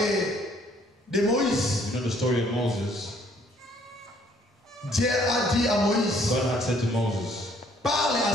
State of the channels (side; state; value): both; normal; correlation 0.63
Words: de Moïse. You know the story of Moses. Dieu a dit à Moïse, God had said to Moses, parle